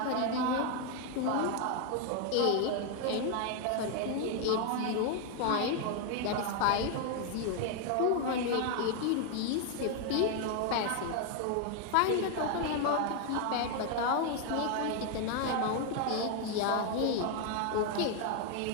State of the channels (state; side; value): different; both; correlation 0.01